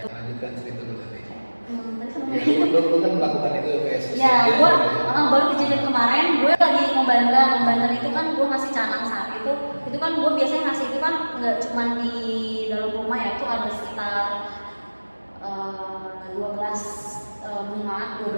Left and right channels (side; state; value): both; inverted; correlation -1.00